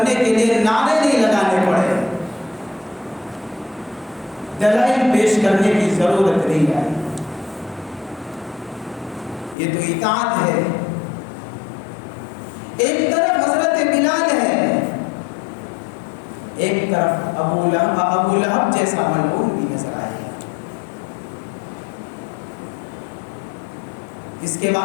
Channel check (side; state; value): right; drops out; at 9.6 s